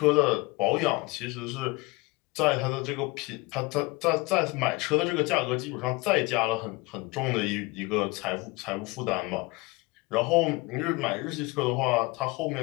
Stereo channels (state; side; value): quieter; right; 24.4 dB